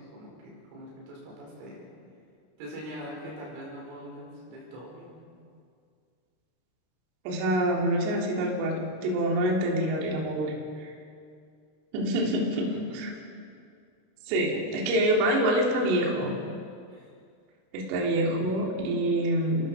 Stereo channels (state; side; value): late; left; 32 ms